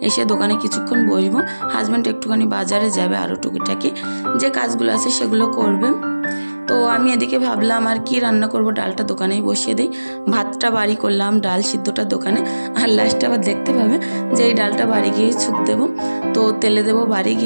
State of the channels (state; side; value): inverted; both; correlation -1.00